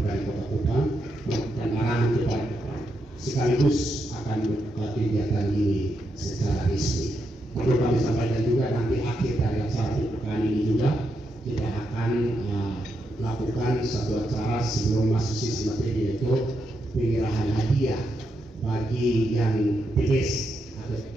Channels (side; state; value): both; normal; correlation 0.82